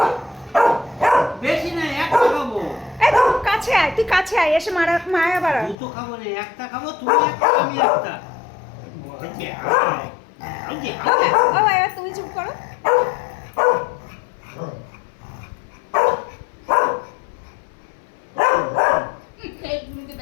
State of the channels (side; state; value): right; drops out; at 5.8 s